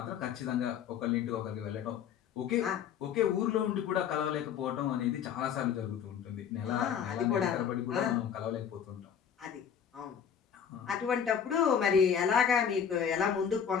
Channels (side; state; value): right; quieter; 8.0 dB